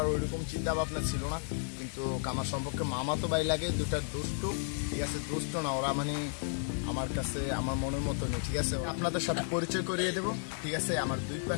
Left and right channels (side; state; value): right; silent; 56 dB below the other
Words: ওইরকম চিন্তা ভাবনা ছিল না, কিন্তু আমার সম্পর্কে মামা তো ভাই লাগে, দুটা দুষ্টু। ঠিক আছে, দুষ্ট না ওরা, মানে আমার কাছে আমার মনের মতো নেই। ঠিক আছে, আপনাদের সাথে পরিচয় করিয়ে দেবো। ঠিক আছে, আমার দুই